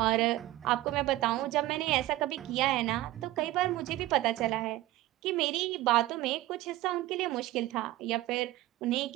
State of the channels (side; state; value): left; quieter; 16.6 dB